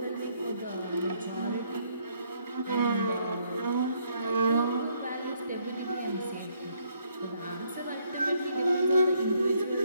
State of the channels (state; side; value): inverted; both; correlation -0.70